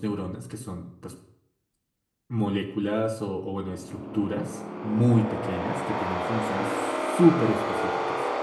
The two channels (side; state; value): both; identical; correlation 1.00